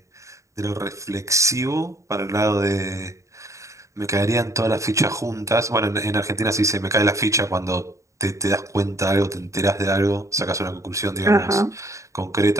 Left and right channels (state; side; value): late; left; 0.15 ms